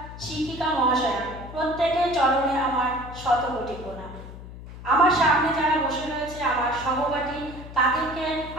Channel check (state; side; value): noise; left; hum, 14 dB below the sound